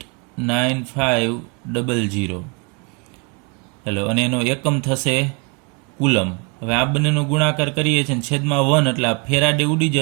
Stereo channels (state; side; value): quieter; left; 31.6 dB